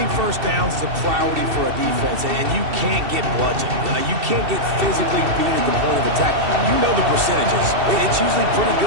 first downs is a priority for a defense, and you can't get bludgeoned. You can't get physically beat at the point of attack. You know the percentages. It's usually pretty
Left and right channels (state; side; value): late; left; 2.7 ms